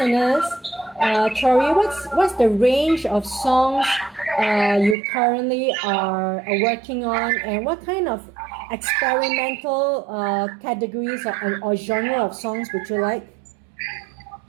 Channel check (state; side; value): drops out; left; at 5.0 s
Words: Tori, what's the range of songs you currently are working on, and what kind of experimental categories or genre of songs would you like